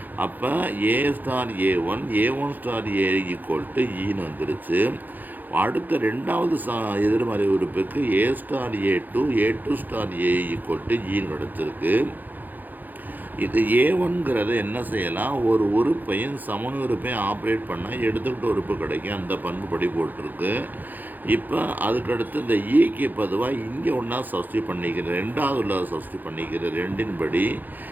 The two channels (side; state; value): left; late; 0.085 ms